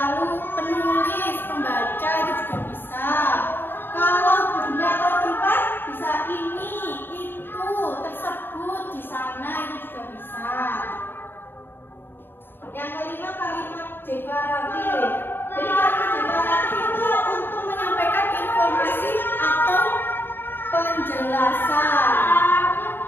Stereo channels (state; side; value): late; right; 0.10 ms